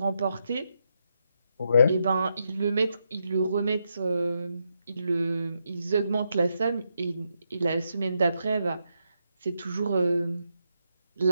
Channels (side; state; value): both; inverted; correlation -0.82